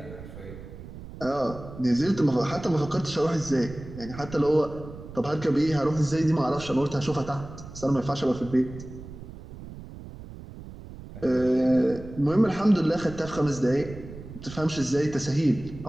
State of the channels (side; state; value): right; noise; rumble, 14 dB below the sound